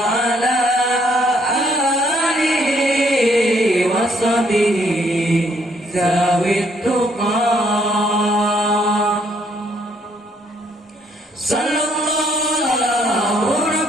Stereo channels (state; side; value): normal; both; correlation 0.68